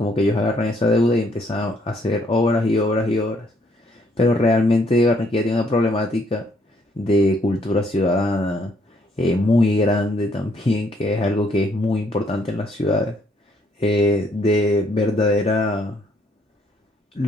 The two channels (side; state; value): both; normal; correlation 0.68